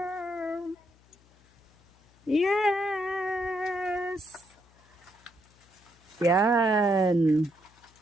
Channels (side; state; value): left; noise; hum, 30 dB below the sound